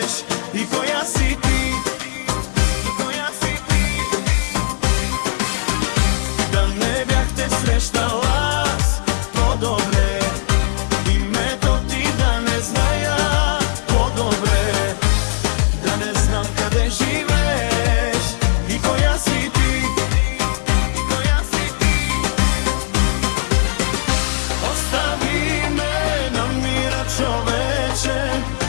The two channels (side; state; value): right; silent; 64 dB below the other